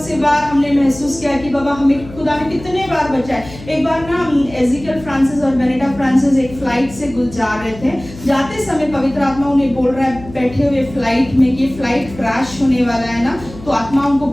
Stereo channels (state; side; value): noise; left; hum, 16 dB below the sound